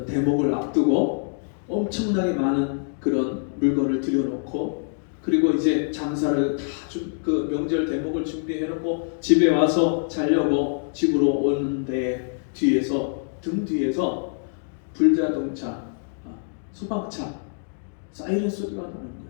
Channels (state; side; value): silent; right; digital silence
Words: 대목을 앞두고 엄청나게 많은 그런 물건을 들여놓고 그리고 이제 장사를 다 그 명절 대목을 준비해놓고 집에 와서 자려고 집으로 오는데 등 뒤에서 불자동차, 소방차 사이렌 소리가 나는 거예요.